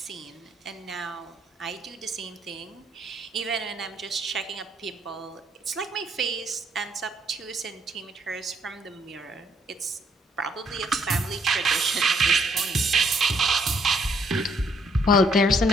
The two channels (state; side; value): normal; both; correlation 0.69